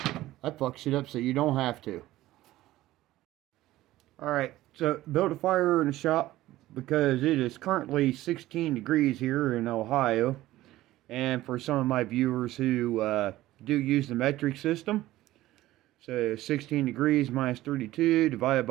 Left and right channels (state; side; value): quieter; left; 15.9 dB